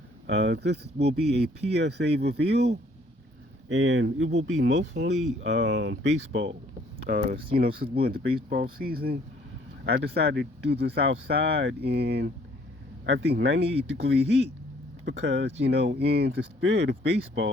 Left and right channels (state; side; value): normal; both; correlation 0.61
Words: This will be a PSA reveal, and it will be mostly baseball. Since we're in the baseball season, I decided to do this outside in, I think, 98-degree heat because, in the spirit of